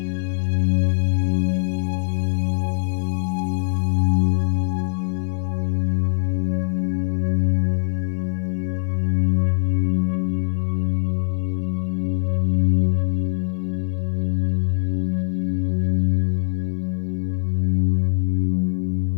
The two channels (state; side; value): silent; right; digital silence